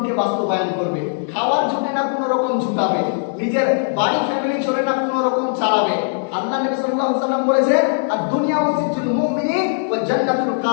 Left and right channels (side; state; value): right; silent; 61 dB below the other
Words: বাস্তবায়ন করবে, খাওয়ার জন্য না কোনো রকম ঝুঁকাবে, নিজের বাড়ি ফ্যামিলি চলে না কোনো রকম চালাবে। আল্লাহ নবী সাল্লাল্লাহু আলাইহি ওয়াসাল্লাম বলেছেন, আর দুনিয়া সিজনুল মুমিনিন ওয়া জান্নাতুল